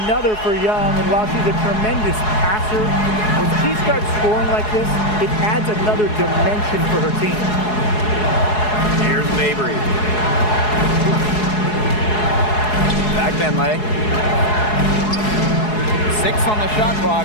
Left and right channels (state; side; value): late; right; 4.7 ms